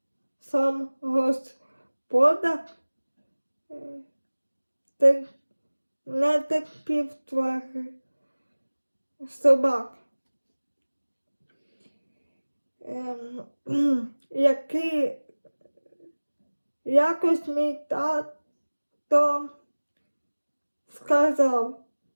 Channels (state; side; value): inverted; both; correlation -1.00